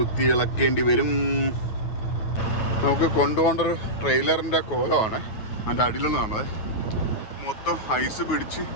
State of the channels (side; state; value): right; late; 9.3 ms